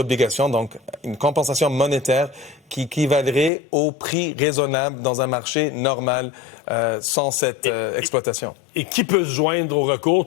donc une compensation monétaire qui équivalerait au prix raisonnable dans un marché normal sans cette exploitation. Et qui peut se joindre au recours?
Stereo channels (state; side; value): drops out; right; at 3.5 s